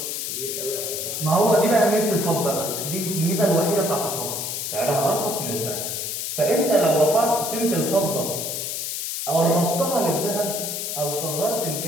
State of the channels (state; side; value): noise; left; hiss, 3 dB below the sound